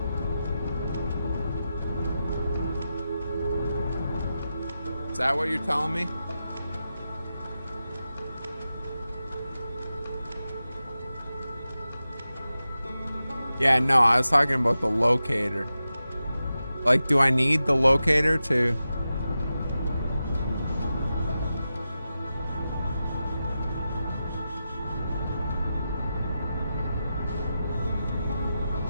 Is that what you're telling me? Yeah, no, I was talking about the locator. Like, do I need the locator to...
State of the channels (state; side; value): inverted; both; correlation -0.91